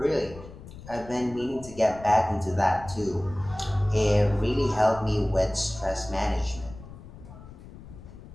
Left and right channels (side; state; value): left; noise; rumble, 16 dB below the sound